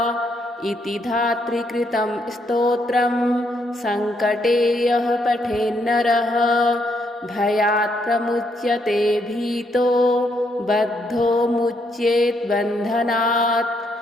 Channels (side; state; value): both; normal; correlation 0.75